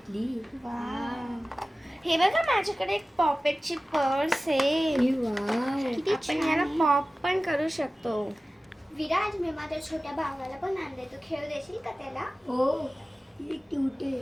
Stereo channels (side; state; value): both; normal; correlation 0.96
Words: हे बघा, माझ्याकडे एक पॉपेटची पर्स आहे. किती आपण छान ह्याला आहे. पॉप पण करू शकतो. विराज, मी माझ्या छोट्या भावाला पण आणले. तू खेळ देशील का त्याला? हो, ही क्यूट आहे.